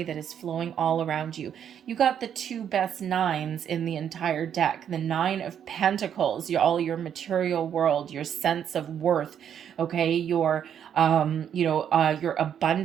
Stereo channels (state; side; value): quieter; left; 8.9 dB